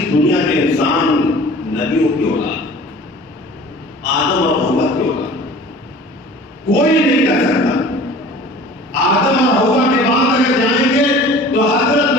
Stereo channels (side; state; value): both; normal; correlation 0.44